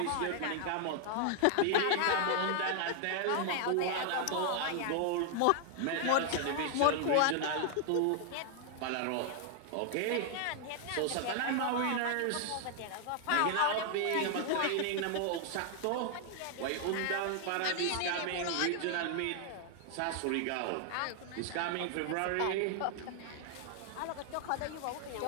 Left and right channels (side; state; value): both; different; correlation 0.00